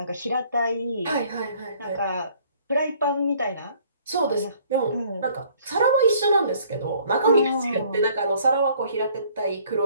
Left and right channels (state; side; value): inverted; both; correlation -0.59